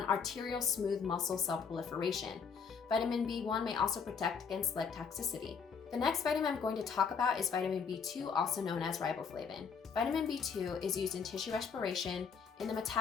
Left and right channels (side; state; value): right; quieter; 6.1 dB